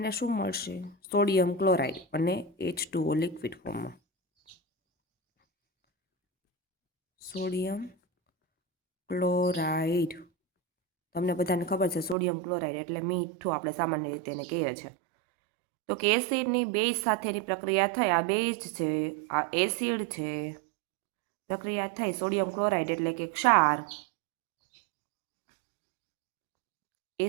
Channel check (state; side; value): drops out; left; at 12.2 s